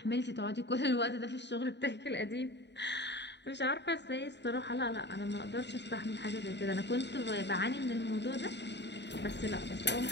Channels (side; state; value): right; late; 0.51 ms